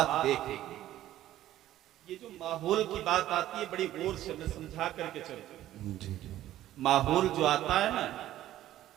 دیکھیں، یہ جو ماحول کی بات آتی ہے بڑی غور سے میں سمجھا کر کے چلتا ہوں۔ جی ماحول جو آتا ہے نا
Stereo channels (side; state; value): left; quieter; 13.4 dB